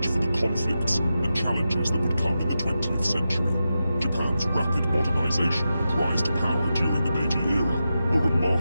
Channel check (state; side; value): inverted; both; correlation -0.90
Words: for the conflicts and challenges that would come in the 20th century. Japan's rapid modernization and rise to power during the Meiji era were